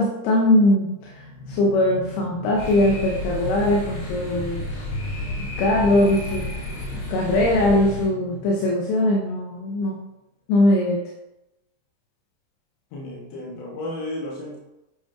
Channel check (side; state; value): right; late; 30 ms